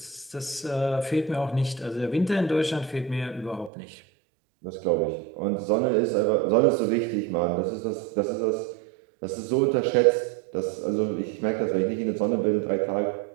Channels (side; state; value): left; drops out; at 3.7 s